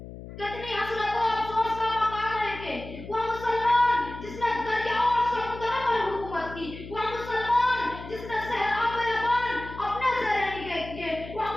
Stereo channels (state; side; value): noise; left; hum, 13 dB below the sound